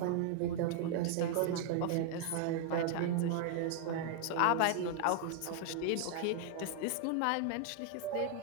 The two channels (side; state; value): both; different; correlation 0.00